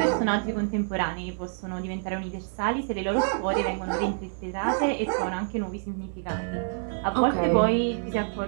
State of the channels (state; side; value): silent; left; digital silence